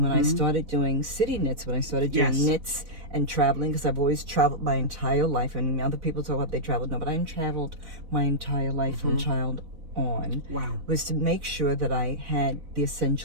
I started doing city knits, when I started doing knits and traveling, because I've always traveled my entire life, and other people talk about they traveled, no, but I traveled my entire life from child on. Wow. Was to make sure that I had the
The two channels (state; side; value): late; left; 4.0 ms